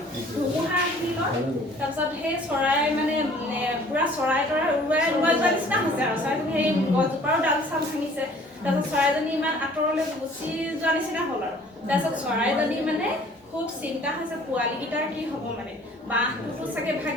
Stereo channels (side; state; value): both; normal; correlation 0.53